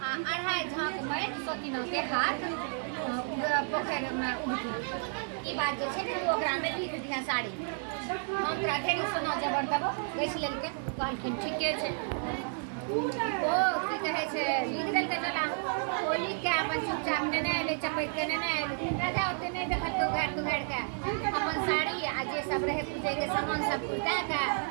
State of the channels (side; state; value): left; silent; 57 dB below the other